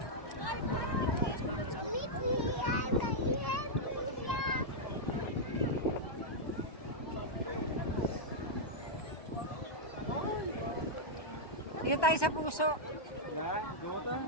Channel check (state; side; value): late; right; 1.2 ms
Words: Dito tayo sa puso.